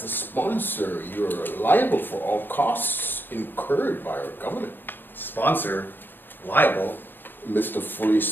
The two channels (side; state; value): right; late; 0.094 ms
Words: the sponsor, you're liable for all costs incurred by our government. Sponsor, liable. Mr. Fully